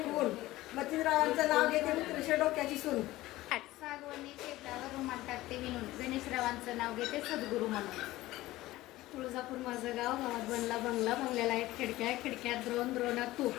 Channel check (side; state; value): right; quieter; 17.3 dB